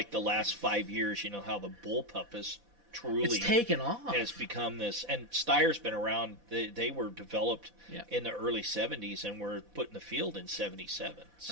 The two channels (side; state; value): left; late; 4.1 ms